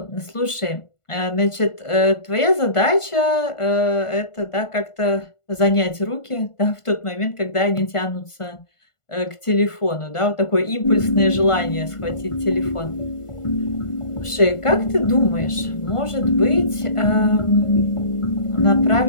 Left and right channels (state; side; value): late; right; 1.5 ms